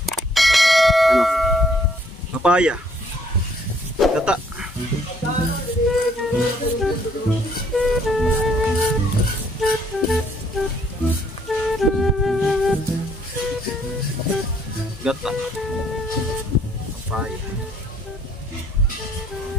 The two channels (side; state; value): both; normal; correlation 0.64